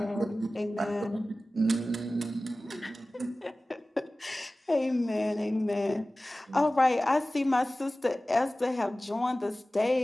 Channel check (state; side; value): normal; both; correlation 0.97